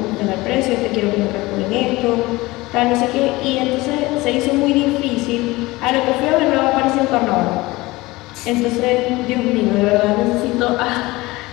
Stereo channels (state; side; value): quieter; right; 20.6 dB